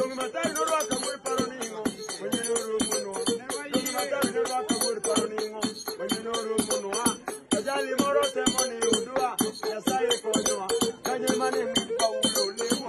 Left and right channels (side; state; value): both; identical; correlation 1.00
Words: matari no raka muri paroningo, wenye nuru munwa. Dongi matari no raka muri paroningo, wenye nuru munwa. Kajali moro temoni udua, yasaye konyoa. Kanye mane mpa ulole.